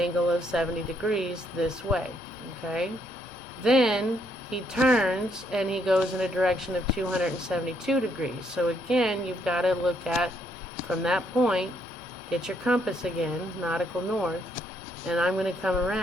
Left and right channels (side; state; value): both; normal; correlation 0.72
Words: of 70 degrees this way, okay? Then he turns and he goes in a direction of 272 degrees. So again, you've got to look at, from that point, get your compass again, nautical north, and I'm going to come